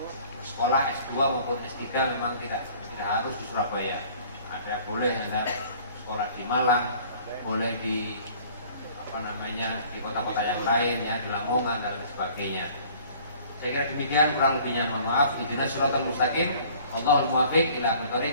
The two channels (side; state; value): both; inverted; correlation -0.52